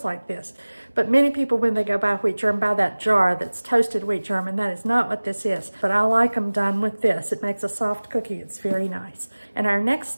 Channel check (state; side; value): inverted; both; correlation -1.00